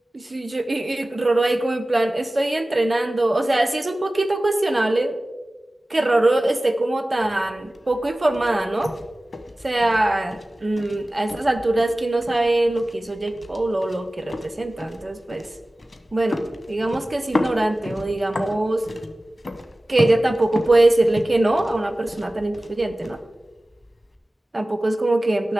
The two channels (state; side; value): normal; both; correlation 0.97